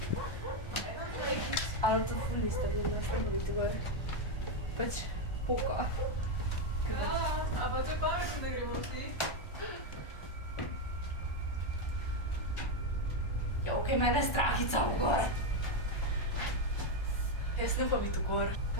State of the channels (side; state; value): right; late; 1.3 ms